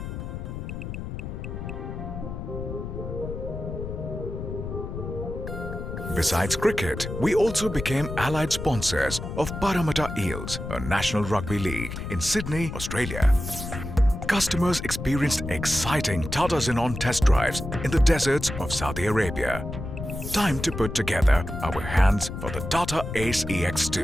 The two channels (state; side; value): noise; left; rumble, 7 dB below the sound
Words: Besides cricket, we also became allied sponsors of Parramatta Eels, a national rugby league in Sydney, Australia. Customers experienced exciting Tata Xenon test drives in the deserts of Saudi Arabia. Time to put together our hands for the Tata Ace